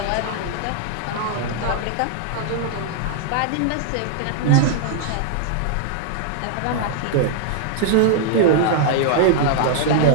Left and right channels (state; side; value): different; both; correlation -0.01